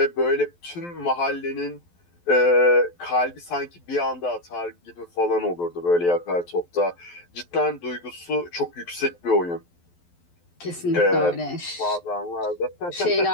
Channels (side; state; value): right; late; 12 ms